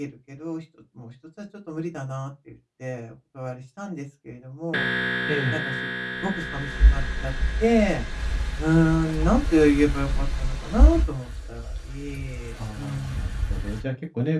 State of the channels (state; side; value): identical; both; correlation 1.00